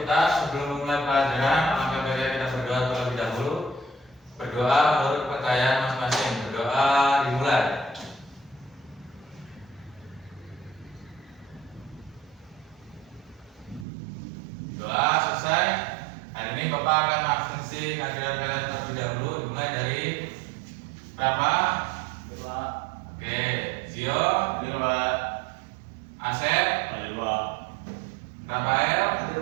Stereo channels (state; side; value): drops out; left; at 13.9 s